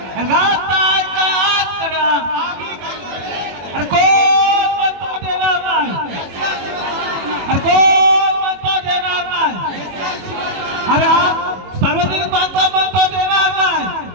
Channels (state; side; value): late; left; 21 ms